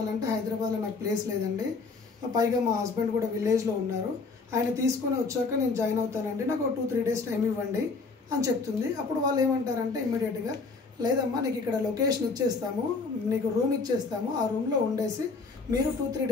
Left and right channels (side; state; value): right; quieter; 4.2 dB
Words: హైదరాబాద్లో నాకు ప్లేస్ లేదండి, పైగా మా హస్బెండ్ కూడా విలేజ్లో ఉన్నారు, ఆయన తీసుకొని వచ్చాక నేను జాయిన్ అవుతానండి, నాకు 2-3 days టైం ఇవ్వండి అని చెప్తుంది. అప్పుడు వాళ్ళు ఏమంటారంటే ఇమ్మీడియట్గా, లేదమ్మా నీకు ఇక్కడ లొకేషన్ ఇచ్చేస్తాము, నీకు రూమ్ ఇచ్చేస్తాము, ఆ రూమ్లో ఉండేసి మీరు 2-3